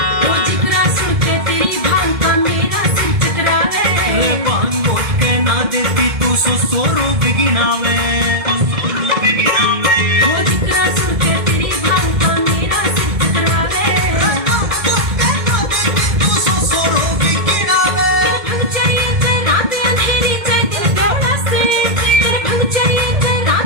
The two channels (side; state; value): left; late; 2.1 ms